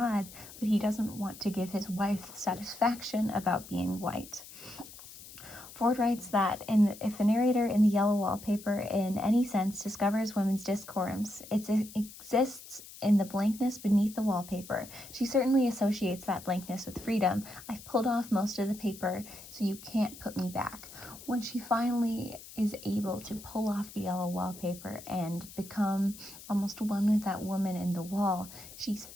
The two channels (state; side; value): noise; left; hiss, 16 dB below the sound